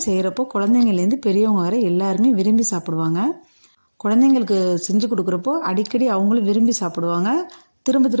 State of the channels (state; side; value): inverted; both; correlation -1.00